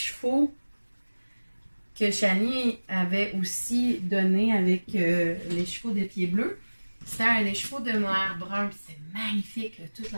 que Shani avait aussi donné avec les chevaux de Pieds Bleus, c'était un écheveau de noir brun, puis c'est magnifique, là, toute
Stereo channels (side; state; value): both; inverted; correlation -1.00